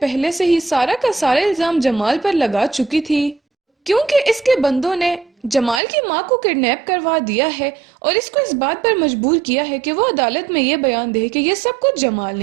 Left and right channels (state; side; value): drops out; left; at 5.8 s